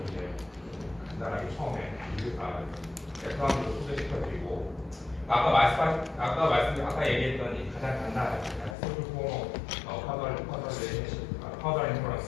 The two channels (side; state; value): right; drops out; at 8.8 s